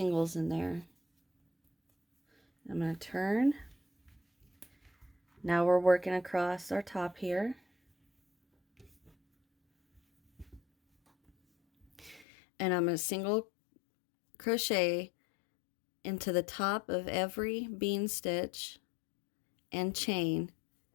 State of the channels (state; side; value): drops out; right; at 12.2 s